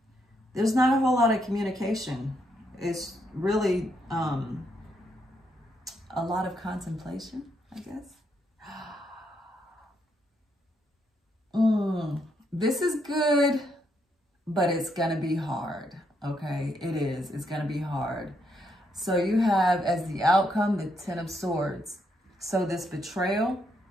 there's not a whole lot of communication. It's really a lot of contemplation, I guess. This is good, but it's gonna be hard, okay? It is, it's gonna be hard. So you have as the outcome, the Ten of Swords. So this betrayal,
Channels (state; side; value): normal; both; correlation 0.77